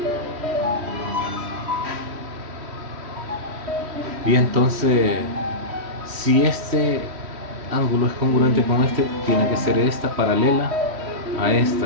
Y entonces, si este ángulo es congruente con este, tiene que ser esta paralela a esta,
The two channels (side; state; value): left; late; 3.1 ms